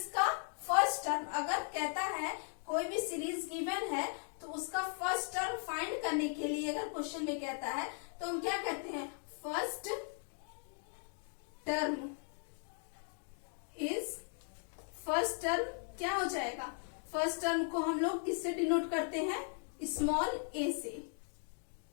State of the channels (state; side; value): silent; right; 53 dB below the other